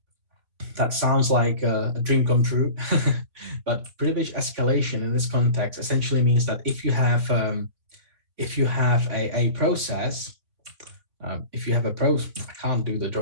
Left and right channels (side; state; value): left; late; 3.6 ms